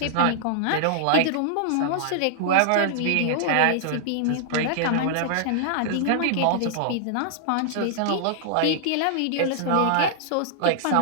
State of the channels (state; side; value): different; both; correlation -0.01